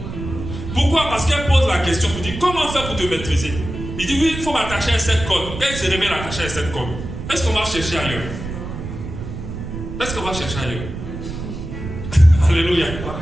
Pourquoi? Parce qu'elle pose la question, vous dit comment faire pour te maîtriser? Il dit oui, il faut m'attacher à cette corde. Quand il se réveille attaché à cette corde, est-ce qu'on va chercher ailleurs? Est-ce qu'on va chercher ailleurs? Alléluia.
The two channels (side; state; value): right; noise; rumble, 8 dB below the sound